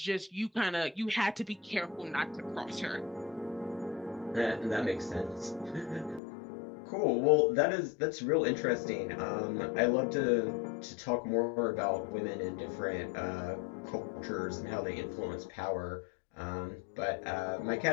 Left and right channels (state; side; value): drops out; right; at 6.2 s